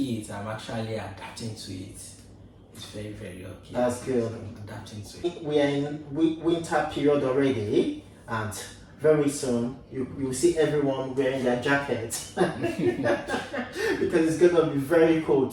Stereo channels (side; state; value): both; identical; correlation 1.00